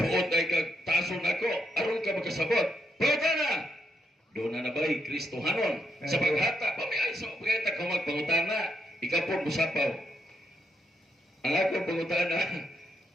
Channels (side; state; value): both; normal; correlation 0.79